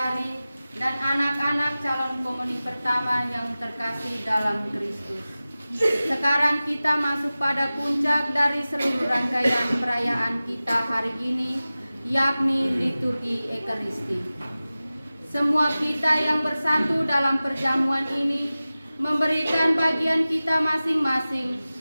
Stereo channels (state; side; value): inverted; both; correlation -0.97